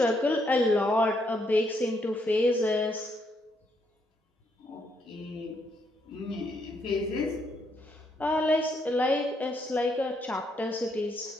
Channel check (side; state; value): both; normal; correlation 0.75